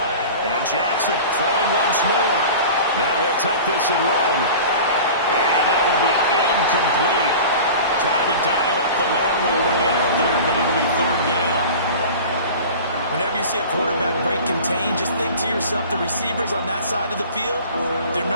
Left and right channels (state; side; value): inverted; both; correlation -0.38